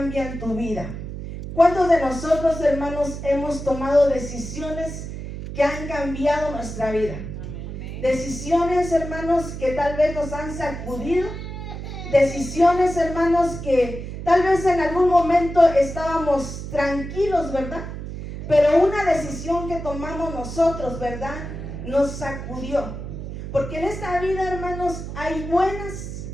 tu vida. ¿Cuántos de nosotros, hermanos, hemos tomado decisiones que han cambiado nuestra vida? Amén. Decisiones, hermanos, que tal vez nos han sacudido. Decisiones, hermanos, que tal vez en algún momento estábamos tranquilos, ¿verdad? Pero una decisión que tomamos nosotros, ¿verdad?, nos sacudió. Porque en esta vida, hermanos, hay buenas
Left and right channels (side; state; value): right; noise; hum, 8 dB below the sound